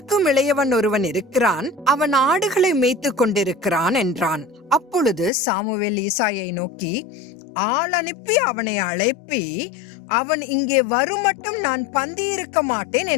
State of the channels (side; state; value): right; drops out; at 5.3 s